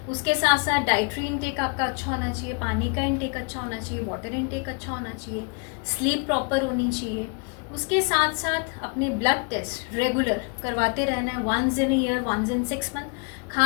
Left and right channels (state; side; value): quieter; right; 35.5 dB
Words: उसके साथ साथ डाइटरी इनटेक आपका अच्छा होना चाहिए, पानी का इनटेक अच्छा होना चाहिए, वाटर इनटेक अच्छा होना चाहिए, स्लीप प्रॉपर होनी चाहिए। उसके साथ साथ अपने ब्लड टेस्ट रेगुलर करवाते रहना है, once in year, once in 6 month.